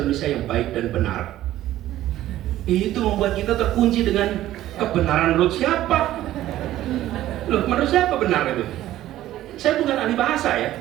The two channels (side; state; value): left; quieter; 14.0 dB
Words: Indonesia yang baik dan benar. Itu membuat kita terkunci dengan kebenaran menurut siapa? Loh, menurut siapa benar itu? Saya bukan ahli bahasa ya,